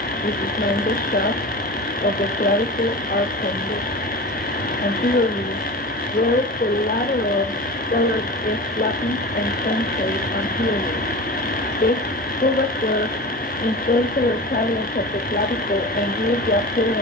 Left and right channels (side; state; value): both; normal; correlation 0.31